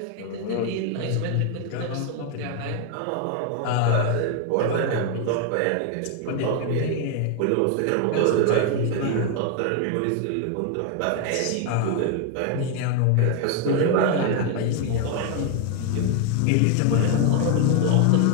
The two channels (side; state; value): both; different; correlation 0.01